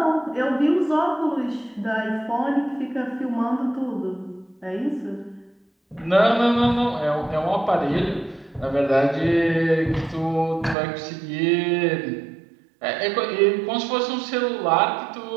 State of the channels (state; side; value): drops out; left; at 10.8 s